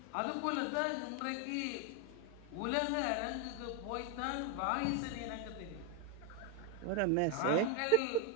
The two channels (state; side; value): different; both; correlation 0.00